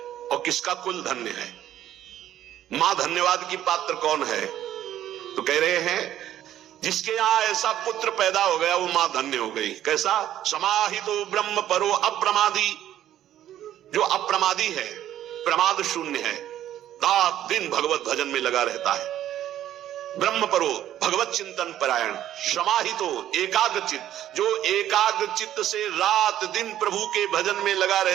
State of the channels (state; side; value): quieter; left; 11.9 dB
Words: और किसका कुल धन्य है। मां धन्यवाद की पात्र कौन है, तो कह रहे हैं जिसके यहां ऐसा पुत्र पैदा हो गया वो मां धन्य हो गई। कैसा, समाहितो ब्रह्म परो अप्रमादी, जो अप्रमादी है, प्रमाद शून्य है, रात दिन भगवत भजन में लगा रहता है। ब्रह्म परो, भगवत चिंतन परायण, समाहितो एकाग्रचित, जो एकाग्रचित से रात दिन प्रभु के भजन में लगा